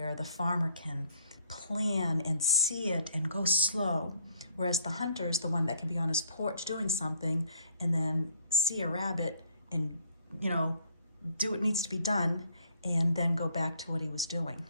the farmer can plan and see it and go slow, whereas the hunter is the one that can be on his porch doing something and then see a rabbit and, do what needs to be done and then go back to what he was doing.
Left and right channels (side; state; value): both; inverted; correlation -0.62